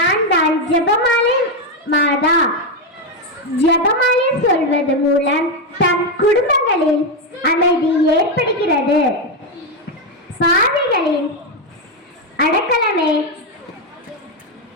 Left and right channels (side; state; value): both; normal; correlation 0.06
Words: தான் ஜெபமாலை மாதா. ஜெபமாலை சொல்வது மூலம் தம் குடும்பங்களில் அமைதி ஏற்படுகிறது. பாவிகளின் அடக்கலமே